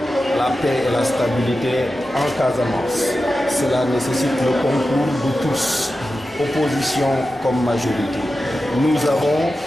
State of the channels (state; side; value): normal; both; correlation 0.92